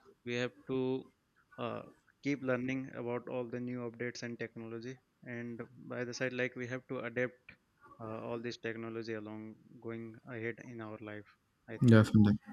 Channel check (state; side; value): identical; both; correlation 1.00